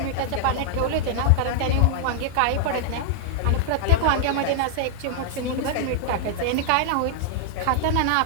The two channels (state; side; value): different; both; correlation -0.01